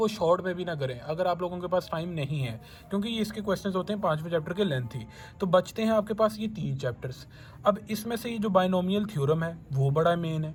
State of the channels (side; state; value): both; identical; correlation 1.00